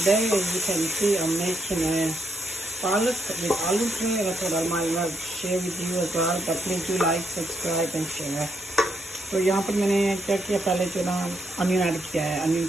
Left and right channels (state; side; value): normal; both; correlation 0.78